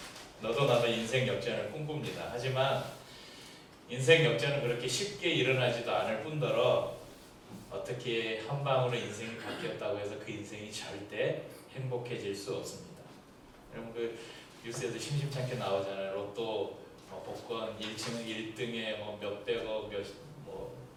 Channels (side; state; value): both; identical; correlation 1.00